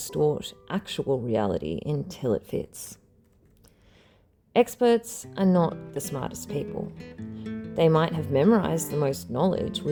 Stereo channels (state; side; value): identical; both; correlation 1.00